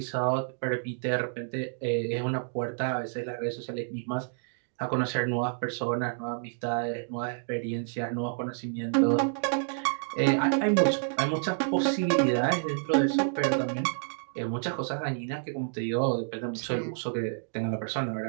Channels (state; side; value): silent; left; digital silence